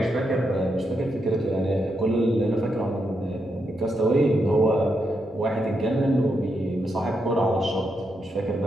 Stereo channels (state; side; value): noise; right; rumble, 28 dB below the sound